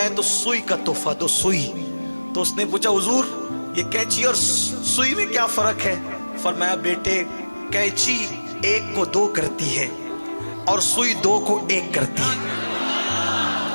ہے تو سوئی کا تحفہ دو، سوئی۔ تو اس نے پوچھا حضور یہ کینچی اور سوئی میں کیا فرق ہے؟ فرمایا بیٹے کینچی ایک کو دو کرتی ہے اور سوئی دو کو ایک کرتی ہے۔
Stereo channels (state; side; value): inverted; both; correlation -1.00